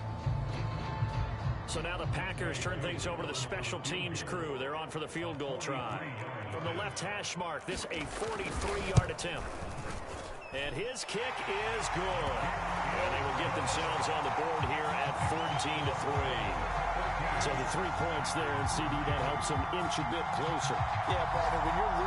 5. So now the Packers turn things over to the special teams crew. They're on for the field goal try. From the left hash mark, this a 43-yard attempt. And his kick is good. And they will get themselves on the board here at 14-3. So the 3 points there, and CD, that helps them inch a bit closer. Yeah, brother, when you're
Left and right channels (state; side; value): identical; both; correlation 1.00